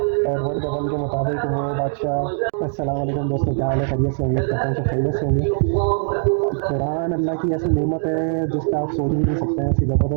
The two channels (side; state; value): left; silent; digital silence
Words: ایڈورڈ گبن کے مطابق وہ بادشاہ۔ السلام علیکم دوستوں، کیا حال ہے؟ خیریت سے؟ امید کرتا ہوں سب خیریت سے ہوں گے۔ قرآن اللہ کی ایسی نعمت ہے جس کا آپ سوچ بھی نہیں سکتے ہیں، ایسی